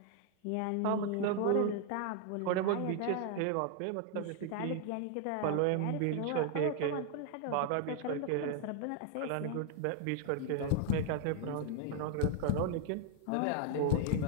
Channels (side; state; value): both; different; correlation 0.00